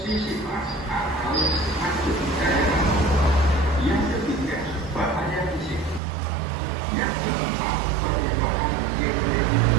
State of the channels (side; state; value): left; drops out; at 6.0 s